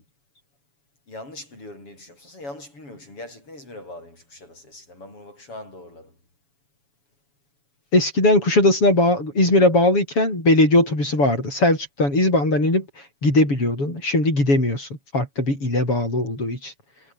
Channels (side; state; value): right; late; 7.1 ms